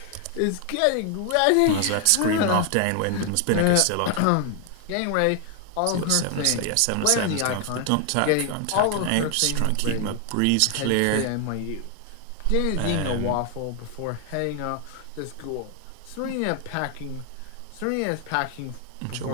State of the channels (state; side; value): different; both; correlation 0.00